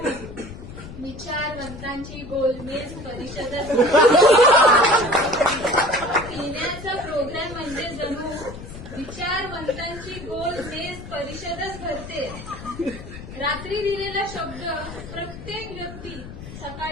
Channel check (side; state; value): left; noise; rumble, 13 dB below the sound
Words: विचारवंतांची गोलमेज परिषदच. पिण्याचा प्रोग्राम म्हणजे जणू विचारवंतांची गोलमेज परिषदच भरते. रात्री दिलेला शब्द प्रत्येक व्यक्ती